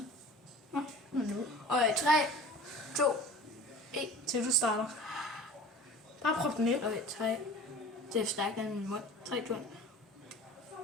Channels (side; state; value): both; normal; correlation 0.42